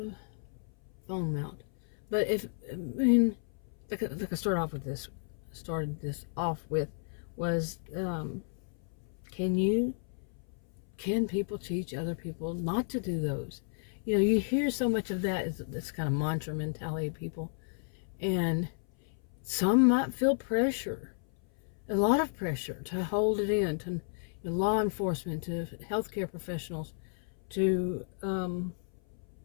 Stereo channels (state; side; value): silent; right; 56 dB below the other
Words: phone mount. But like I started this off with was can people teach other people not to do those? You know, you hear so much of that, this kind of mantra mentality of people, and some might feel pressure, a lot of pressure to hold it in, to law enforcement, to healthcare professionals, to I